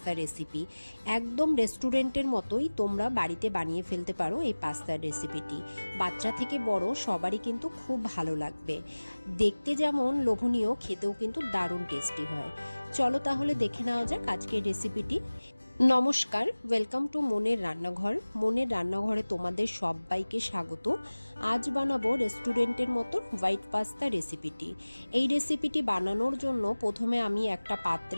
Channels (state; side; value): inverted; both; correlation -1.00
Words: রেসিপি। একদম রেস্টুরেন্টের মতোই তোমরা বাড়িতে বানিয়ে ফেলতে পারো এই পাস্তার রেসিপিটি। বাচ্চা থেকে বড় সবারই কিন্তু খুব ভালো লাগবে। দেখতে যেমন লোভনীয়, খেতেও কিন্তু দারুণ টেস্টি হয়। চলো তাহলে দেখে নেওয়া যাক আজকের রেসিপিটি। নমস্কার, ওয়েলকাম টু মনের রান্নাঘর। মনের রান্নাঘরে তোমাদের সবাইকে স্বাগত। আজ বানাবো রেস্টুরেন্টের মতো হোয়াইট পাস্তা রেসিপিটি। এই রেসিপিটি বানানোর জন্য প্রথমে আমি একটা